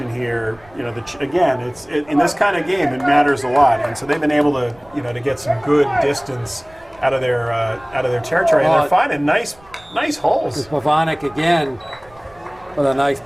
here. You know, in this kind of game, it matters a lot, and so they've been able to, to get some good distance out of their territory, and they're finding nice holes. There's Pavanik again with a nice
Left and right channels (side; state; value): right; noise; rumble, 27 dB below the sound